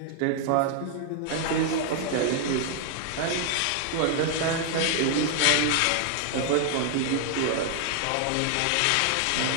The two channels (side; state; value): both; different; correlation 0.00